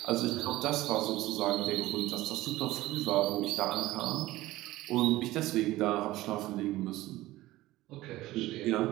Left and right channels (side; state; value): left; quieter; 17.2 dB